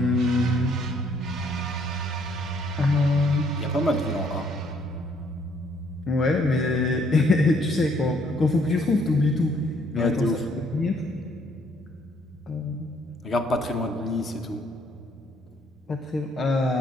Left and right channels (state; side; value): normal; both; correlation 0.66